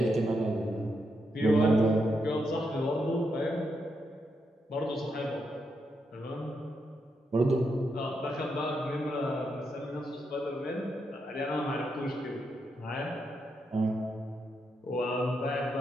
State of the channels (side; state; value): both; normal; correlation 0.82